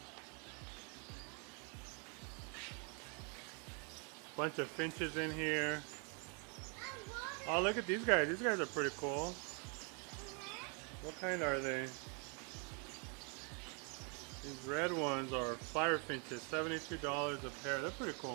Bunch of finches in here. Oh, look at these guys. These guys are pretty cool. What kind are they? These red ones are fire finches. $72 a pair. They're pretty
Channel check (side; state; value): left; quieter; 36.1 dB